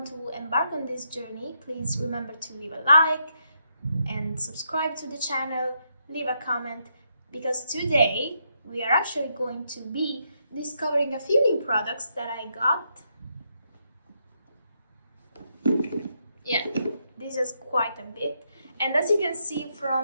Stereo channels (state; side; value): inverted; both; correlation -0.79